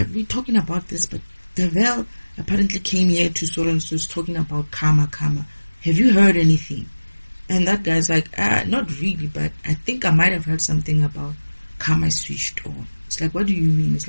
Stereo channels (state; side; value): inverted; both; correlation -1.00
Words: we're talking about this, but Devil apparently came here to so and so is talking about karma. Have you heard anything? And that guy's like, not really, but I think I might have heard something about karma switched on. It's like, what do you mean? It's